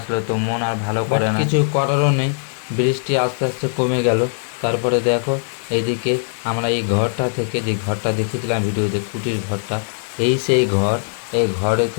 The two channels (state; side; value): silent; right; 61 dB below the other